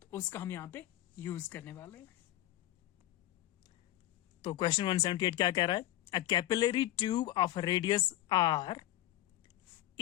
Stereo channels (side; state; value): right; quieter; 14.5 dB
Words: तो उसका हम यहाँ पे यूज करने वाले हैं। तो क्वेश्चन 178 क्या कह रहा है, a capillary tube of radius r